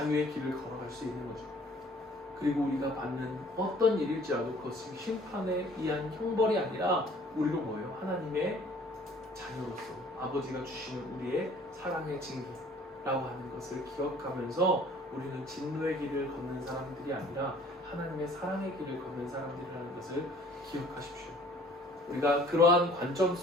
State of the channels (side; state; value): both; normal; correlation 0.54